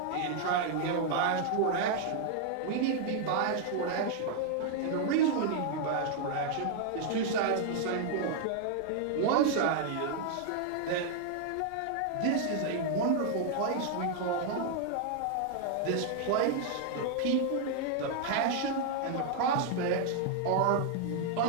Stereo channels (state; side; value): different; both; correlation 0.00